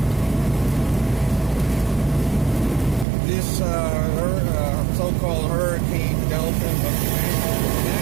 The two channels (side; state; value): left; drops out; at 3.1 s